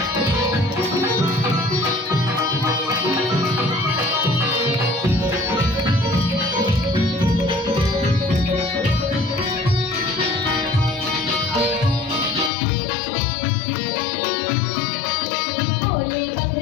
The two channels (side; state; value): right; drops out; at 12.5 s